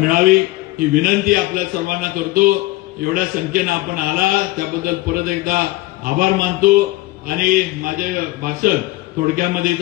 ही विनंती आपल्या सर्वांना करतो. एवढ्या संख्येनं आपण आला त्याबद्दल परत एकदा आभार मानतो आणि माझे भाषण थोडक्यामध्ये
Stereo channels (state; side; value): quieter; right; 19.3 dB